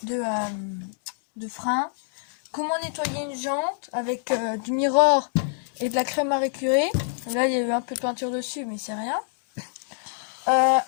frein, comment nettoyer une jante avec du mirror et de la crème à récurer. Là, il y a eu un peu de peinture dessus, mais c'est rien.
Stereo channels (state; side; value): silent; right; digital silence